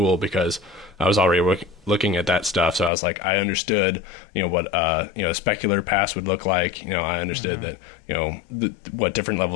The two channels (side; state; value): right; drops out; at 2.9 s